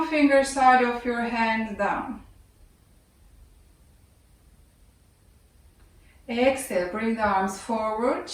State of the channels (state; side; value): identical; both; correlation 1.00